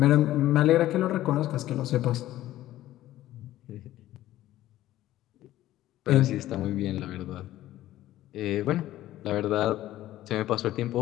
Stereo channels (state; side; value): quieter; right; 14.5 dB